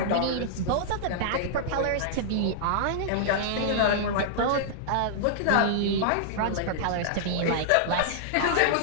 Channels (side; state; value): both; different; correlation -0.02